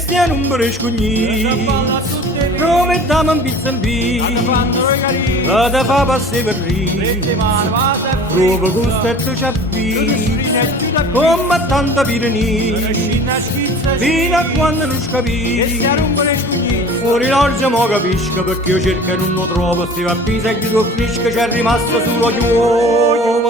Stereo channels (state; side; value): normal; both; correlation 0.43